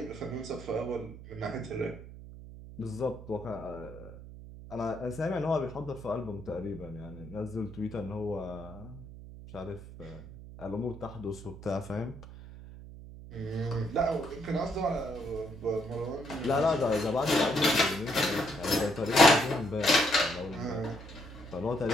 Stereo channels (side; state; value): right; noise; hum, 14 dB below the sound